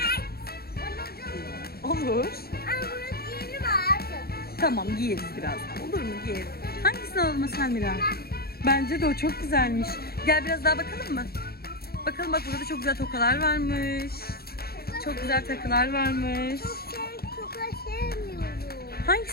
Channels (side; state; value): right; late; 0.45 ms